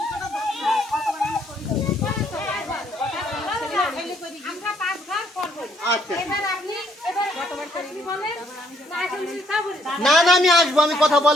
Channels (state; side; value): normal; both; correlation 0.68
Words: না না আমি আসবো, আমি কথা